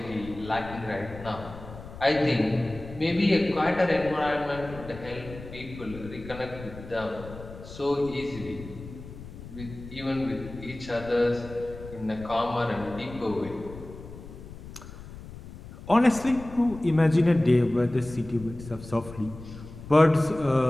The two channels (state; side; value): noise; left; rumble, 14 dB below the sound